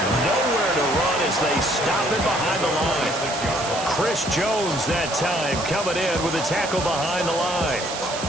Nowhere to run as they stop it behind the line. Chris Jones that time coming in with a tackle behind the line.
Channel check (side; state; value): right; noise; hiss, 8 dB below the sound